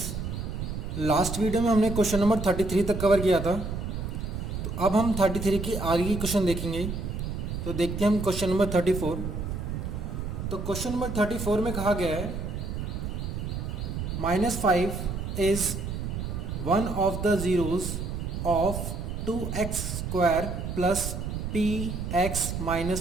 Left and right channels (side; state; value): right; noise; rumble, 4 dB below the sound